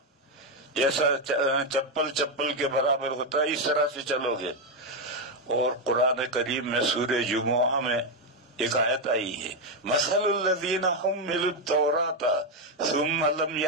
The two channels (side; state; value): both; normal; correlation 0.05